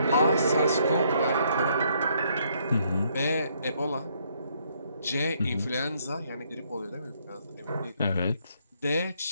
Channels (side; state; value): both; inverted; correlation -0.70